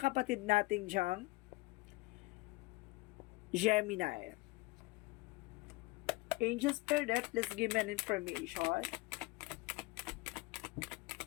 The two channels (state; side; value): quieter; right; 22.6 dB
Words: nating diyang Gemini. Angel Spirit, let's give me an information.